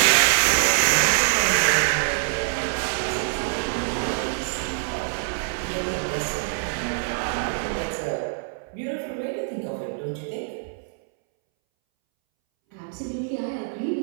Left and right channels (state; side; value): silent; left; 62 dB below the other